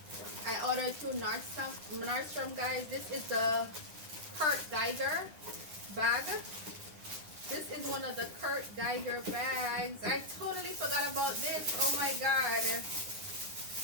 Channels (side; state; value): left; late; 9.7 ms